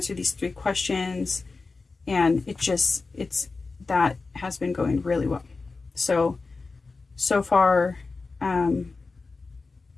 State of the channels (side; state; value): right; quieter; 4.0 dB